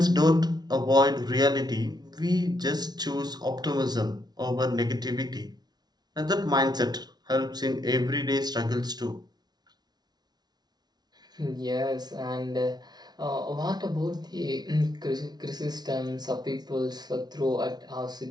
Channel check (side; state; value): left; late; 0.19 ms